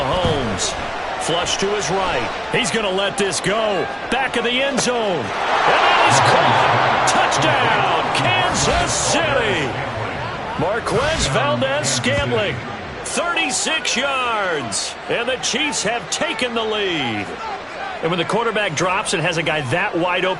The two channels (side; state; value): both; identical; correlation 1.00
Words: Flush to his right. He's going to let this go. Back of the end zone. And that is caught. Touchdown, Kansas City. Marquez Valdez-Scantling. 36 yards, and the Chiefs have taken the lead. And when the quarterback drops and has a guy that wide